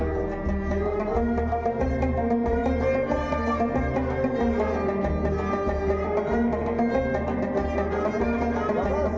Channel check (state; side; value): identical; both; correlation 1.00